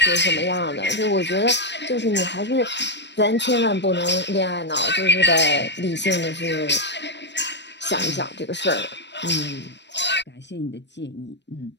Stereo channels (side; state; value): right; late; 0.51 ms